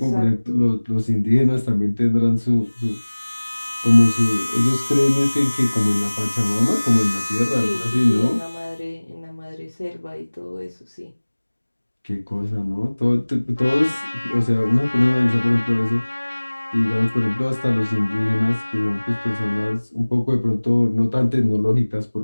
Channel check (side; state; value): both; inverted; correlation -1.00